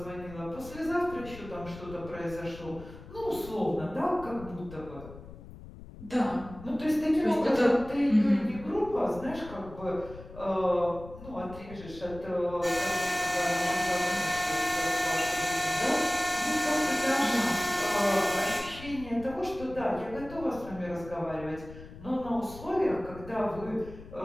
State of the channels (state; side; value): noise; left; rumble, 15 dB below the sound